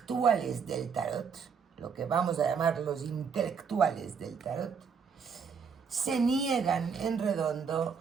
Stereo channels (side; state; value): left; quieter; 6.2 dB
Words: del tarot, lo que vamos a llamar los intelectuales del tarot, se niegan en redondo